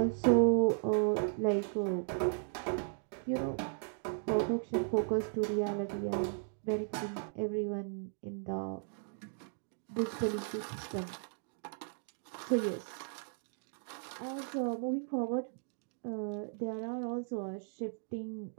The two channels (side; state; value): left; silent; digital silence